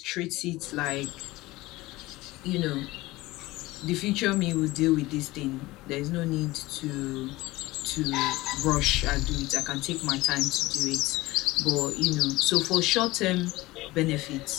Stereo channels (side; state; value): right; quieter; 19.6 dB